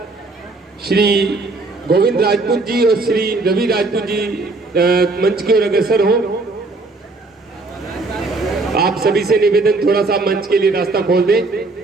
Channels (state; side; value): quieter; left; 3.4 dB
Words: श्री गोविंद राजपूत जी और श्री रवि राजपूत जी मंच की ओर अग्रसर हो। आप सभी से निवेदन, थोड़ा सा मंच के लिए रास्ता खोल दें।